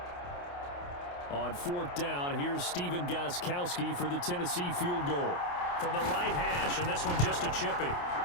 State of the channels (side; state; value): right; late; 28 ms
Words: On 4th down, here's Stephen Gostkowski for the Tennessee field goal. From the right hash, and this one just a chippy.